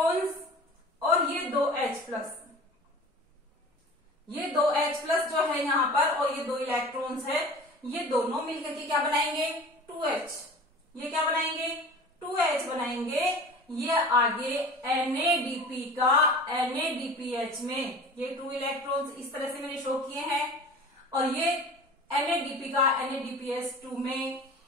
और ये 2H+, ये 2H+ जो है यहाँ पर और ये 2 इलेक्ट्रॉन्स है, ये दोनों मिलकर के क्या बनाएंगे, 2H। ये क्या बनाएंगे, 2H बनाएंगे। ये आगे NADP का NADPH में ये 2 इलेक्ट्रॉन्स इस तरह से मैंने शो किए हैं और ये NADP का NADPH2 में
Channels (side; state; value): both; normal; correlation 0.39